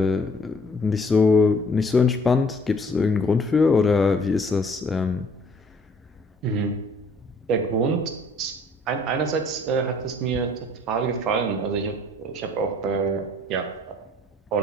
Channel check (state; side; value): normal; both; correlation 0.58